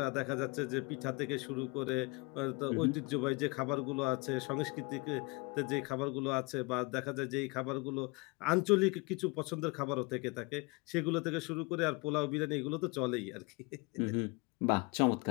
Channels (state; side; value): quieter; right; 26.8 dB